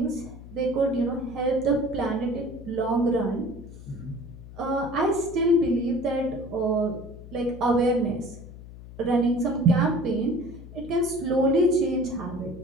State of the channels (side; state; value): left; noise; hum, 15 dB below the sound